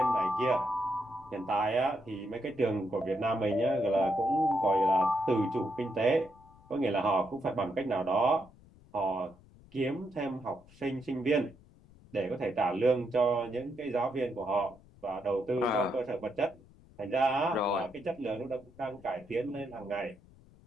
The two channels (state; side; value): noise; left; rumble, 25 dB below the sound